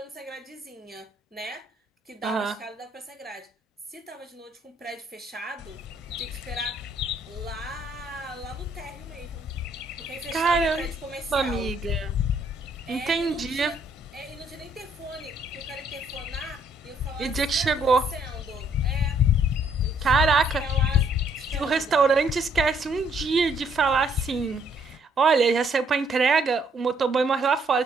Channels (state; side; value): normal; both; correlation 0.67